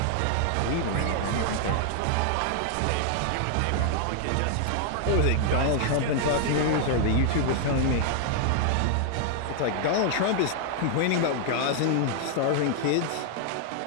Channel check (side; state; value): both; different; correlation 0.00